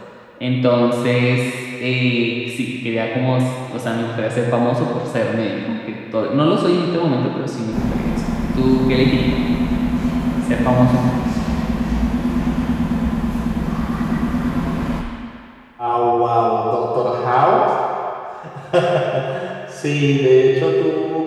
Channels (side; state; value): both; identical; correlation 1.00